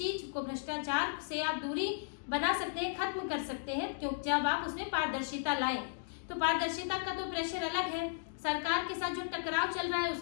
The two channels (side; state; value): right; silent; digital silence